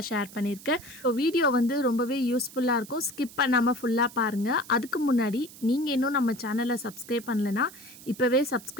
ஷேர் பண்ணியிருக்கேன். ஸோ வீடியோ ரொம்பவே யூஸ்ஃபுல்லாக இருக்கும். ஸ்கிப் பண்ணாமல் ஃபுல்லாக பாருங்கள். அதுக்கு முன்னாடி நீங்கள் இன்னும் நம்ம சேனலை சப்ஸ்கிரைப் பண்ணலைன்னா இப்போவே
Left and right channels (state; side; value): noise; right; hiss, 18 dB below the sound